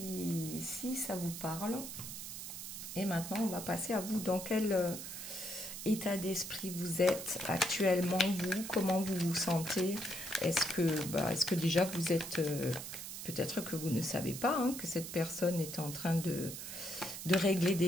ça vous parle. Et maintenant, on va passer à vous. Dans quel état d'esprit vous êtes actuellement, vous? Comment vous vous sentez? Est-ce que déjà vous êtes... peut-être que vous ne savez pas hein, que cette personne est en train de régler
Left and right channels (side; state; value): right; noise; hiss, 8 dB below the sound